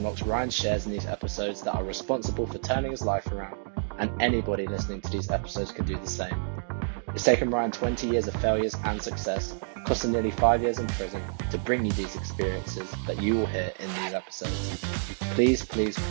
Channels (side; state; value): left; silent; digital silence